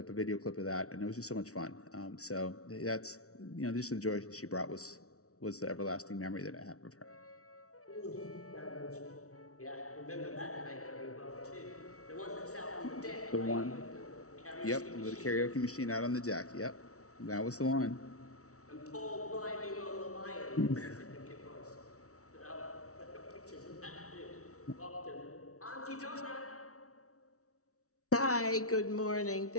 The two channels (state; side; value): late; right; 0.64 ms